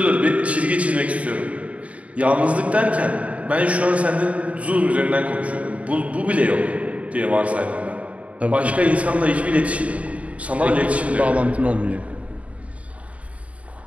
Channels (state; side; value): late; left; 0.066 ms